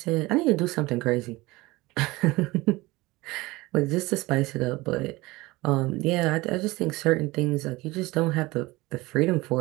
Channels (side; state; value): left; quieter; 21.0 dB